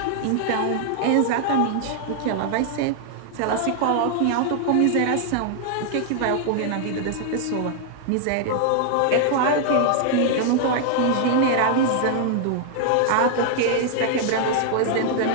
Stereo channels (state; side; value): different; both; correlation 0.00